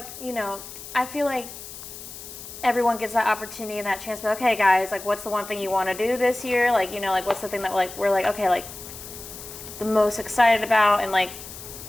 you know, I feel like everyone gets that opportunity and that chance. But okay, guys, like, what's the one thing you want to do this year? Like, you know, like, what's the thing that, like, we're like, okay, like, the most excited about, and like,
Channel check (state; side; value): noise; left; hiss, 13 dB below the sound